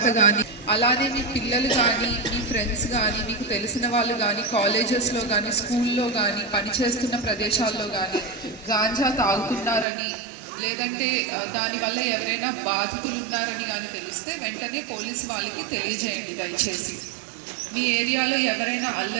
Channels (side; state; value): left; drops out; at 9.9 s